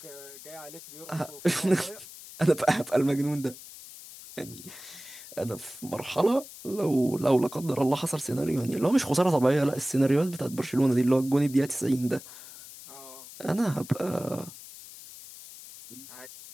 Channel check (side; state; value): left; noise; hiss, 16 dB below the sound